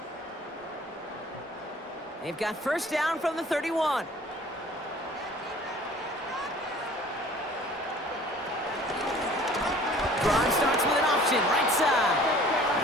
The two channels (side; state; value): both; normal; correlation 0.50